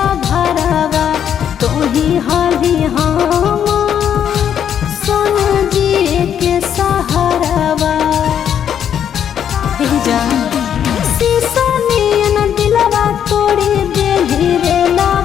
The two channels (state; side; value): quieter; right; 9.0 dB